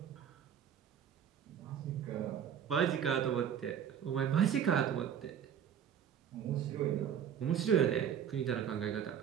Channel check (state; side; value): quieter; left; 8.8 dB